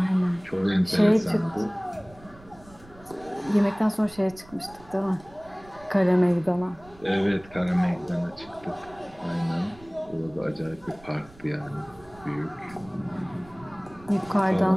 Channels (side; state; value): right; noise; rumble, 23 dB below the sound